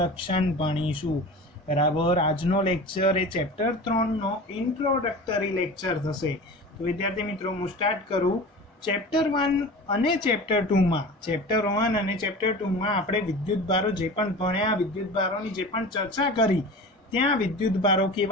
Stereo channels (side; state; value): both; normal; correlation 0.35